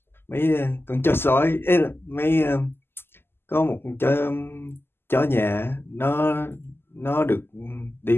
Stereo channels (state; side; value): late; right; 0.11 ms